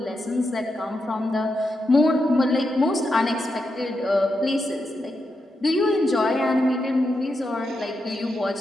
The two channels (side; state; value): both; normal; correlation 0.85